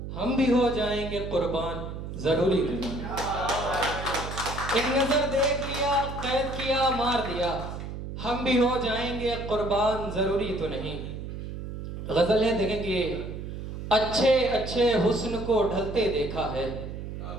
हम भी हो जाएंगे कुर्बान जरूरी तो नहीं। एक नजर देख लिया कैद किया मार दिया, हम भी हो जाएंगे कुर्बान जरूरी तो नहीं। गजल है, देखें कि अच्छे अच्छे हुस्न को ढलते देखा है,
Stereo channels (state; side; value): noise; right; hum, 8 dB below the sound